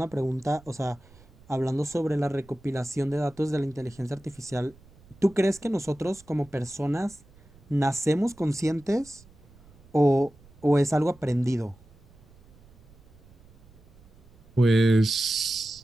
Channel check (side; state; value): right; noise; rumble, 26 dB below the sound